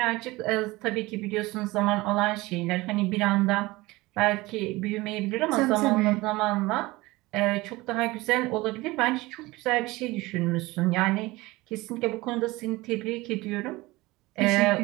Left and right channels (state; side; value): quieter; left; 20.8 dB